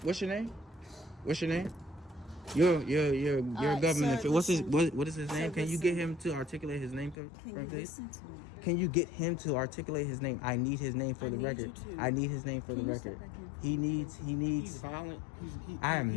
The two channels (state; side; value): drops out; right; at 7.2 s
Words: You're a government. Sir, what is his name? Can you get him to articulate his name, please? Listen to me? Can you get him to articulate his name? I need his name for the record. I need his name for the record. He needs. He's violent. I am